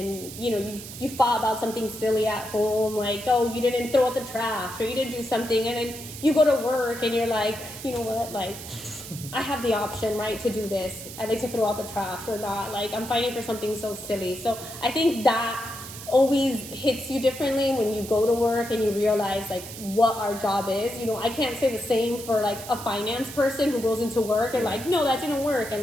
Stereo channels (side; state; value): right; noise; hiss, 12 dB below the sound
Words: you thought about something silly at home, like, oh, you didn't throw out the trash or you didn't do something. And then you go to work and you're like, you know what, like, I have the option, right, to do this. I like to throw out the trash or not. Like, I'm fighting for something so silly. So I think that always hits you differently when you go to work and you realize like what our job is. I can't say the same for like a finance person who goes into work and like, no, that didn't work,